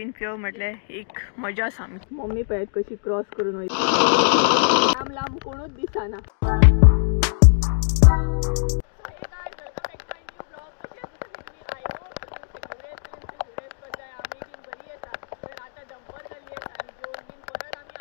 पिव म्हटले एक मजा सामकी. मम्मी पळयत कशी क्रॉस करून वयता, लांब लांब कोणूच दिसना.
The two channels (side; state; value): right; silent; digital silence